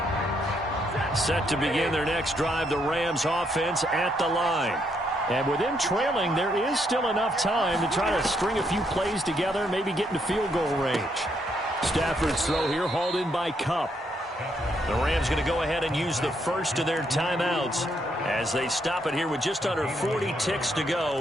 Set to begin their next drive, the Rams offense at the line. And with them trailing, there is still enough time to try to string a few plays together, maybe get into field goal range. Stafford's throw here hauled in by Kupp. The Rams going to go ahead and use the first of their timeouts as they stop it here with just under 40 ticks to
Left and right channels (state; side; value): normal; both; correlation 0.75